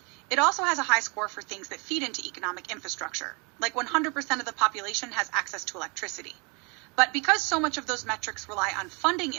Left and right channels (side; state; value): left; quieter; 31.1 dB